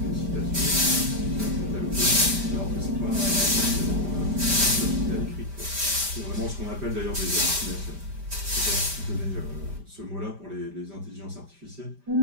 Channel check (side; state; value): left; late; 5.0 ms